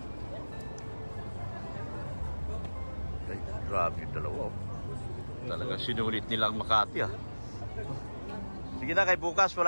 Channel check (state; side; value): inverted; both; correlation -1.00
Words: Ay, grabe yung dalawa. Oh. Talagang sinulit nilang Makati, ah. Sige na, kay bukas